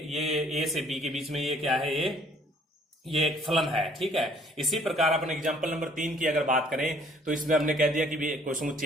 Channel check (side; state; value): both; normal; correlation 0.60